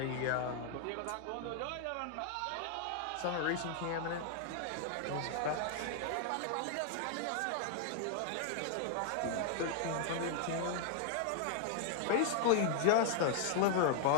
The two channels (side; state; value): both; different; correlation 0.00